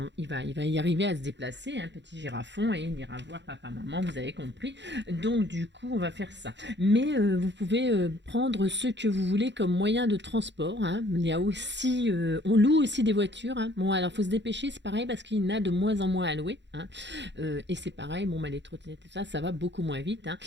il va y arriver à se déplacer, un petit girafon, et il ira voir papa, maman, vous avez compris. Donc du coup, on va faire ça. Mais vous pouvez prendre ce que vous voulez comme moyen de transport. Hein. Il y a aussi, on loue aussi des voitures. Hein. Bon, alors faut se dépêcher, c'est pareil parce qu'il y en a de moins en moins à louer. Hein. Et c'est pareil, les trottinettes, ça va beaucoup moins vite. Hein.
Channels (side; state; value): left; late; 0.52 ms